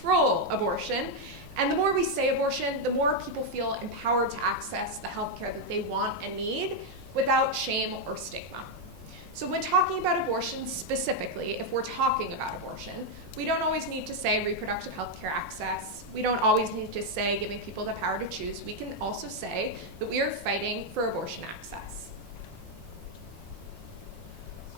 abortion. And the more we say abortion, the more people feel empowered to access the healthcare that they want and need without shame or stigma. So when talking about abortion specifically, if we're talking about abortion, we don't always need to say reproductive healthcare access. We don't always need to say giving people the power to choose. We can also say that we are fighting for abortion access.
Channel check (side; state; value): both; normal; correlation 0.01